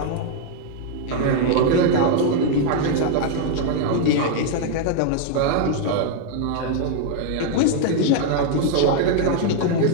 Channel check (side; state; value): both; different; correlation 0.00